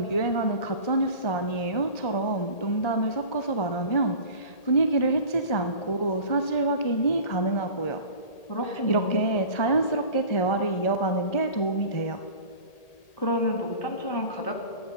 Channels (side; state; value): right; late; 1.8 ms